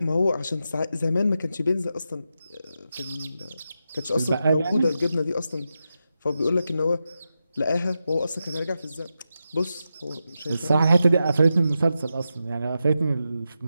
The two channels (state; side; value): inverted; both; correlation -0.88